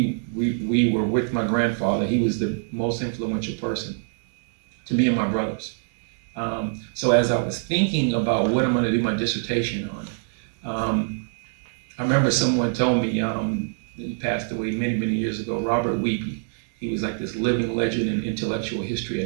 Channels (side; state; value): left; silent; 62 dB below the other